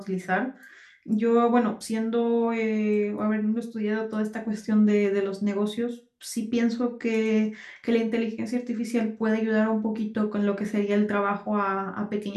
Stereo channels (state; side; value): identical; both; correlation 1.00